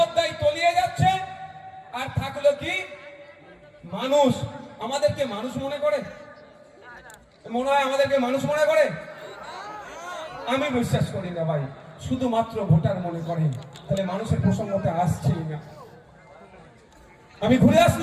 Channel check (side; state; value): both; identical; correlation 1.00